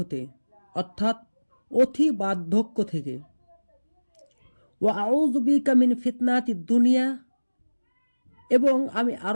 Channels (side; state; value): both; inverted; correlation -1.00